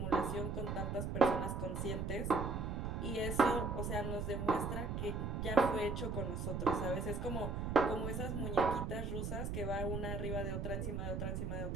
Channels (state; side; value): noise; right; rumble, 2 dB below the sound